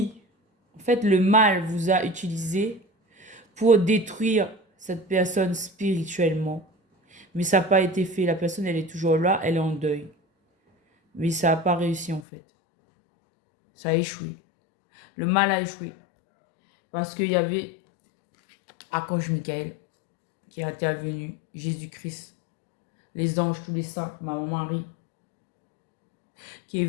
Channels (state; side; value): drops out; right; at 12.2 s